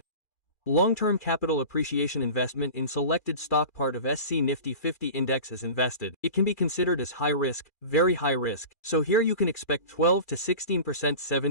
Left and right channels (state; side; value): late; right; 2.4 ms